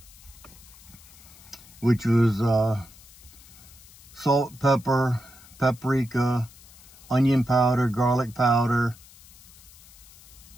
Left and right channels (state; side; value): noise; left; hiss, 22 dB below the sound